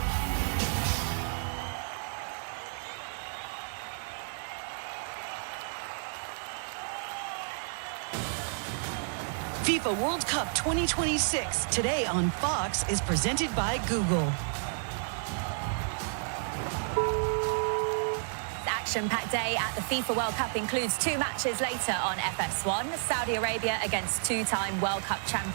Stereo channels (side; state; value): left; silent; digital silence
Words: FIFA World Cup 2026, today on Fox, is presented by Google. Action-packed day at the FIFA World Cup includes 2 matches later on FS1. Saudi Arabia against 2-time World Cup